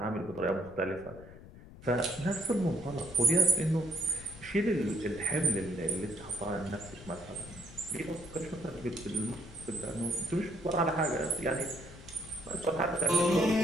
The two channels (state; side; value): noise; left; rumble, 17 dB below the sound